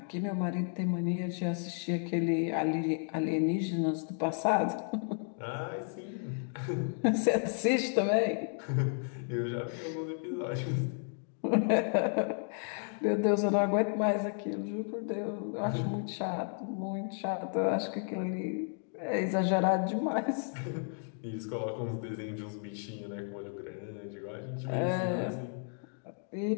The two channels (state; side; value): silent; right; 56 dB below the other